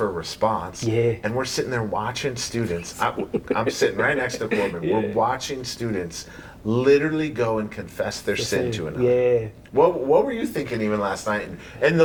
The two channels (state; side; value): identical; both; correlation 1.00